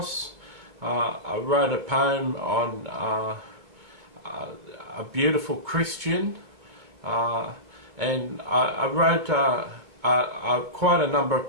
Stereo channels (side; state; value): left; late; 2.2 ms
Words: I wrote a poem on a beautiful Christian, and I wrote quite a number